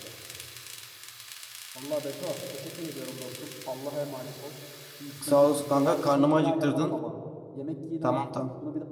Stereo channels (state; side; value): identical; both; correlation 1.00